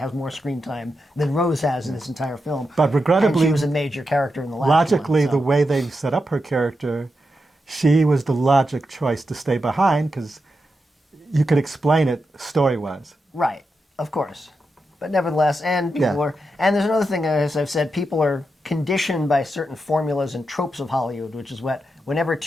more screen time than Rose has in this entire film. But regrettably... And she was a major character in the last logically, one. So. The way they set up her character, she was the logic choice to stay behind because you could explain it story-wise. Right, of course. But nevertheless, and people are... And there's another thing, as I've said, people are conditioned by certain formulas and tropes of Hollywood, which is what whenever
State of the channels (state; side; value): normal; both; correlation 0.87